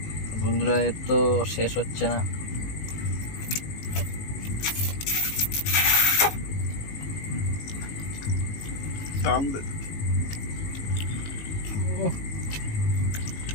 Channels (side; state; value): right; late; 19 ms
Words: বন্ধুরা এর তো শেষ হচ্ছে না।